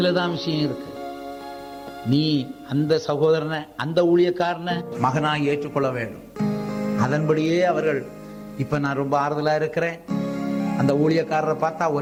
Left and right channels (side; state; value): both; identical; correlation 1.00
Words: விஷயம் இருக்கு. நீ அந்த சகோதரனை, அந்த ஊழியக்காரனை மகனாய் ஏற்றுக்கொள்ள வேண்டும். அதன்படியே அவர்கள், இப்ப நான் ரொம்ப ஆறுதலா இருக்கிறேன், அந்த ஊழியக்காரரை பார்த்தா